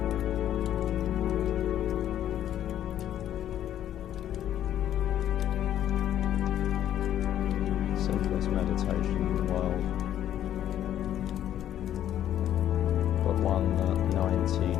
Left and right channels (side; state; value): right; quieter; 11.2 dB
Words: Simplest meditation in the world, but one that